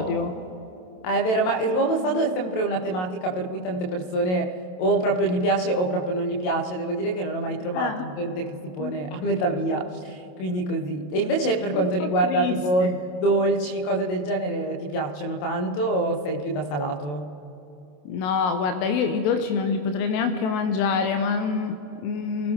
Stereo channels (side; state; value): right; late; 27 ms